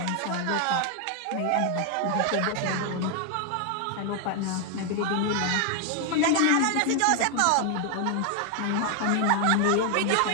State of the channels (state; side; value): different; both; correlation 0.00